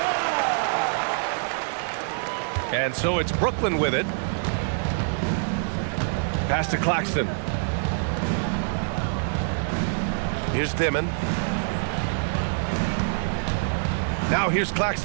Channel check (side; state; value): left; silent; digital silence